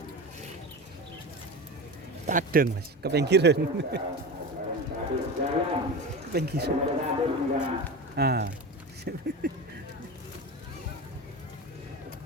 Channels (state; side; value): normal; both; correlation 0.26